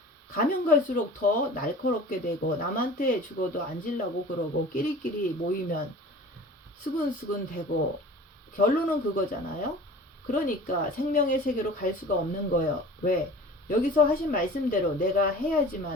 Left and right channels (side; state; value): both; normal; correlation 0.42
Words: 가면 갈수록 더 날카롭게 되고 남한테 죽어도 앉으려고 그러고 끼리끼리 모이면 수근수근 되고 결론은 그거잖아요. 그러니까 생명의 세계로 갈 수가 없는 거예요. 왜? 여기서 하신 말씀대로 내가